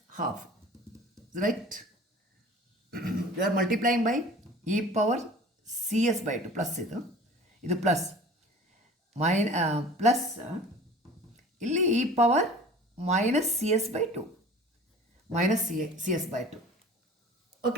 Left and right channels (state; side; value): normal; both; correlation 0.43